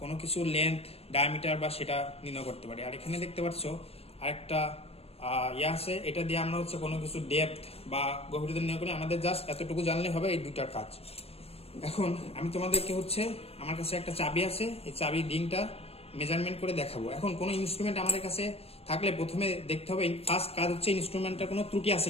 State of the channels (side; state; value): right; late; 0.29 ms